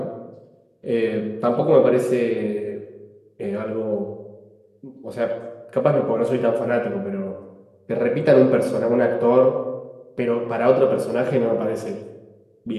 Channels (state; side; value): identical; both; correlation 1.00